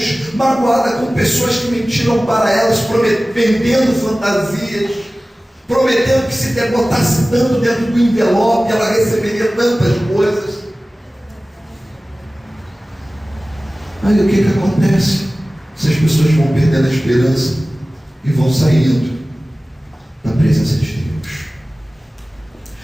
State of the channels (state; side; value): normal; both; correlation 0.97